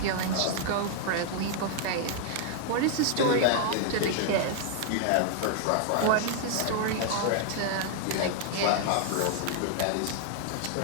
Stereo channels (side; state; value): both; different; correlation 0.00